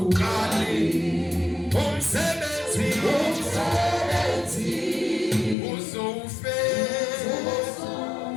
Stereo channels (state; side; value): drops out; right; at 5.6 s